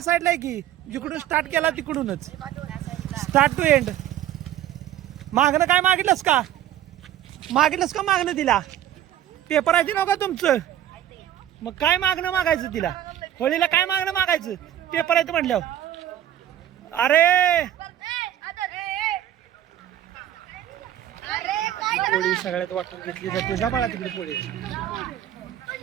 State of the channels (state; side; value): quieter; left; 11.8 dB